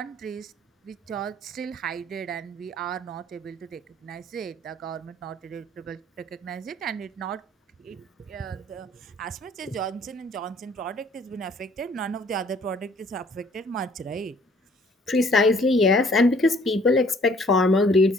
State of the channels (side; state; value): both; normal; correlation 0.58